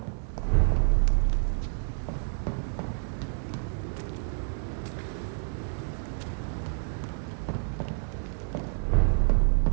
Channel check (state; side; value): silent; left; digital silence